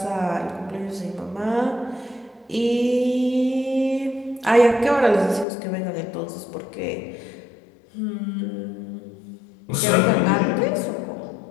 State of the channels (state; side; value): drops out; right; at 5.5 s